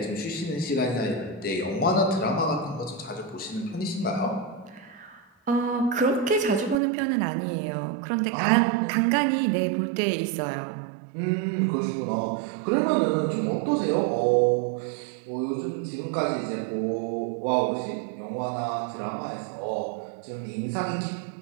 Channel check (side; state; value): left; drops out; at 6.8 s